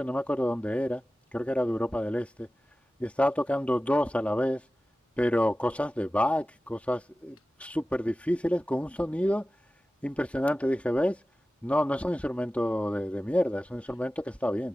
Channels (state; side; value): normal; both; correlation 0.96